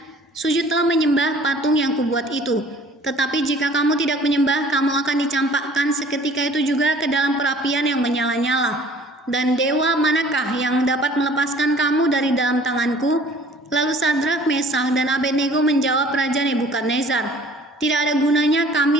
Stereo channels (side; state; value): both; normal; correlation 0.52